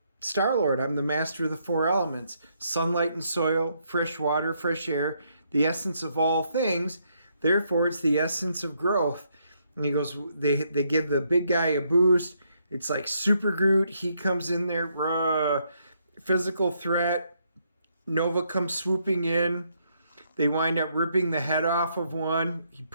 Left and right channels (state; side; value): inverted; both; correlation -0.74